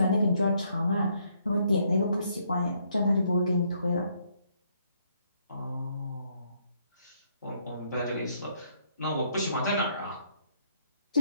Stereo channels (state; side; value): inverted; both; correlation -0.70